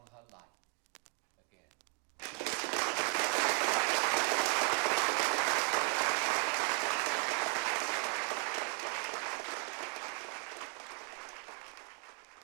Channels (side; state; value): left; quieter; 38.7 dB